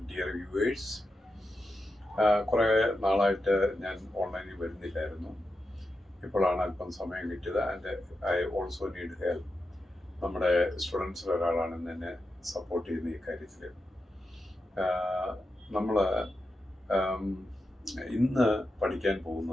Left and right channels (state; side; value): normal; both; correlation 0.88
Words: dear viewers. കുറേ നാളായിട്ട് ഞാൻ ഓൺലൈനിൽ വരുന്നില്ലായിരുന്നു. ഇപ്പോഴാണ് അല്പം സമയം കിട്ടിയത്. And I also need help. നമ്മുടെ സ്റ്റുഡൻസിൽ ഒരാളാണ് എന്നെ സപ്പോർട്ട് ചെയ്യുന്ന ഈ കാര്യത്തിൽ. നമ്മൾ ഇന്ന് പഠിക്കാൻ